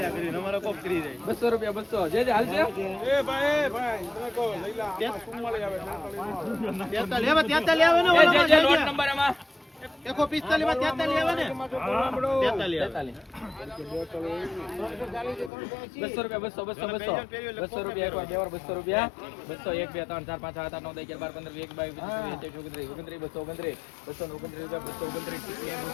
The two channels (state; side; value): drops out; right; at 15.5 s